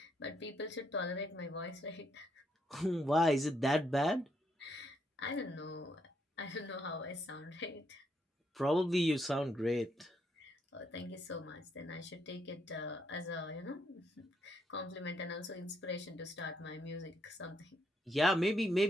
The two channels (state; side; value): normal; both; correlation 0.75